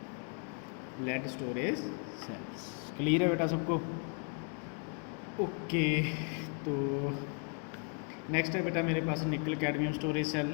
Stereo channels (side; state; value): right; quieter; 39.3 dB